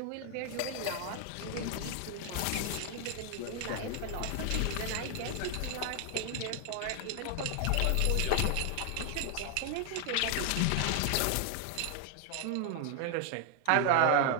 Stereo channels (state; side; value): different; both; correlation 0.00